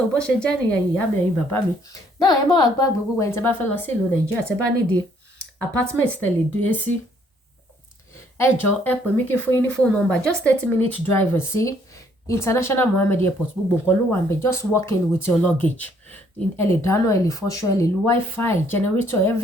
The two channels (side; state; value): both; normal; correlation 0.65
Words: bó ṣe jẹ́ nìyẹn ìyá mi ẹ̀yin bàbá mi. Náà ẹ má wá gbàgbé gbogbo ẹni tẹ́ bá fẹ́ lọ sí ìlú Nàìjíríà tẹ́ bá nídìí apartment tẹ́ lè dé sí. Ẹ jọ̀ọ́ ẹ pè mí kí fún yín ní phone number just 30-minute drive sí International Mohammed Airport. Gbogbo nǹkan ló wà ńbẹ̀. Just walk in with your luggage. Ẹ lè dáná, ẹ lè fọṣọ, ẹ lè lo wifi, generator,